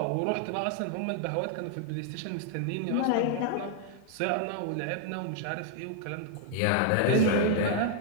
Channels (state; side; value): different; both; correlation 0.00